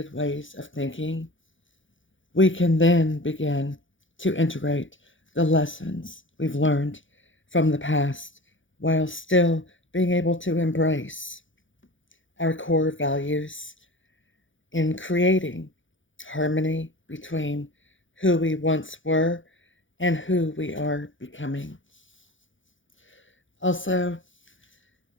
ways of thinking, we can then begin to integrate the lessons we've learned from the past while still being able to embrace our core values in creating harmony between who we once were and who we are becoming. Also,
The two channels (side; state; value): right; late; 0.56 ms